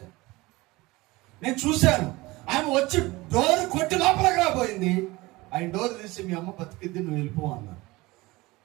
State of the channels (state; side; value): quieter; left; 21.2 dB